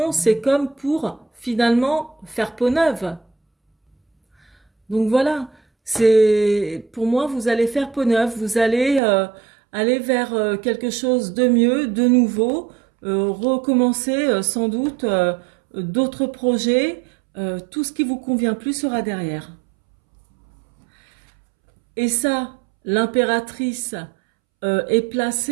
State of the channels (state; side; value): drops out; left; at 9.0 s